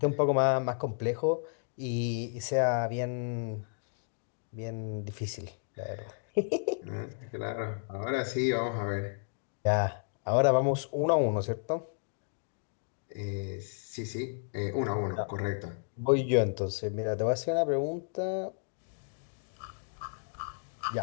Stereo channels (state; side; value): silent; right; digital silence